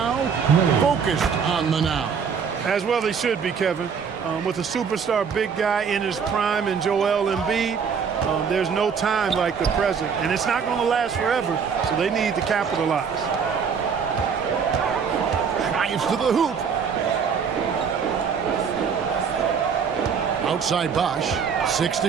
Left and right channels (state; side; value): quieter; left; 6.5 dB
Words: focused on the now. As well they should be, Kevin. With a superstar big guy in his prime and Joel Embiid, There's no time like the present, and it's not going to last forever, so they need to capitalize. Drives to the hoop. Outside Bosch. 6